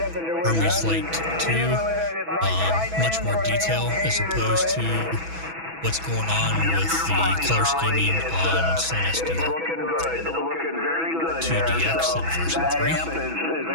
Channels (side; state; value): left; late; 6.1 ms